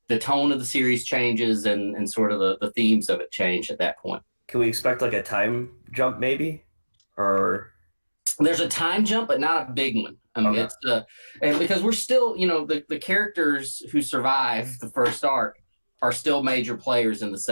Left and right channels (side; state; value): both; inverted; correlation -1.00